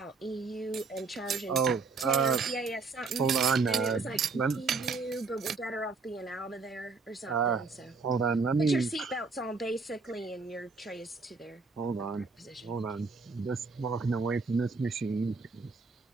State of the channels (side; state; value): left; quieter; 4.3 dB